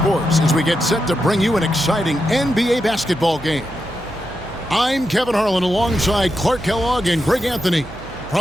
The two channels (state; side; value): noise; right; hum, 16 dB below the sound